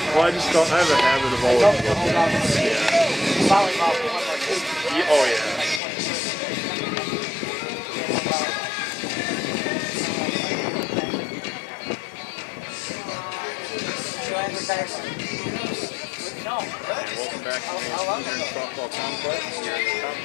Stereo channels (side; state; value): right; drops out; at 5.8 s